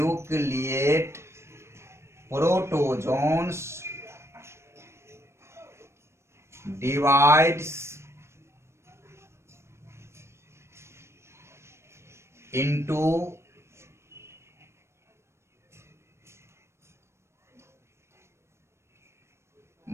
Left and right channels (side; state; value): left; late; 0.13 ms